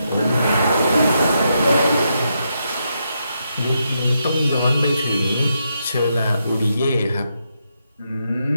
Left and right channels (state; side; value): inverted; both; correlation -0.81